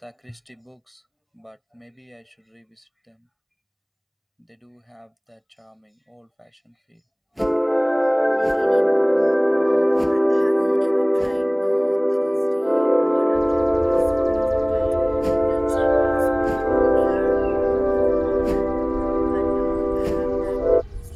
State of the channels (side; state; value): both; identical; correlation 1.00